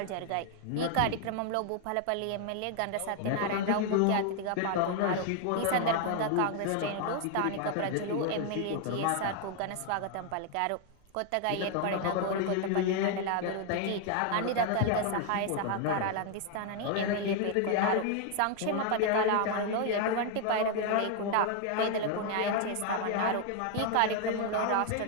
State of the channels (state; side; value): different; both; correlation 0.00